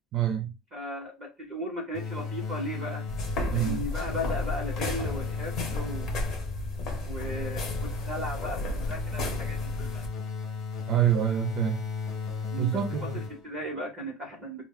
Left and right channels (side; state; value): both; normal; correlation 0.36